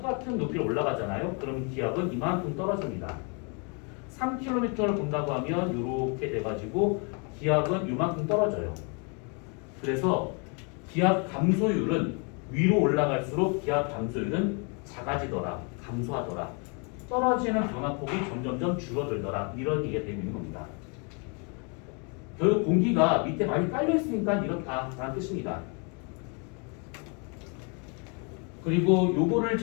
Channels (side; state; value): right; quieter; 35.4 dB